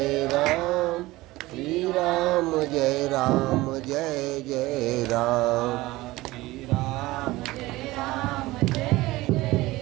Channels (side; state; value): left; quieter; 19.0 dB